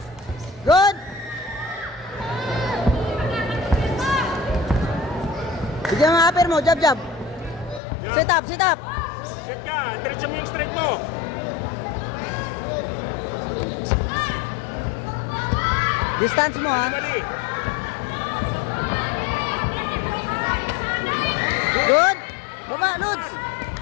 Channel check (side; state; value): right; drops out; at 7.8 s